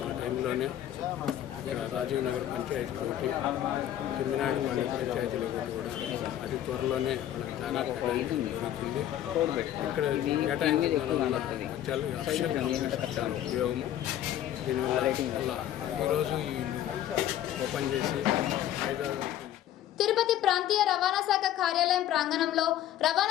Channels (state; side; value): quieter; right; 11.9 dB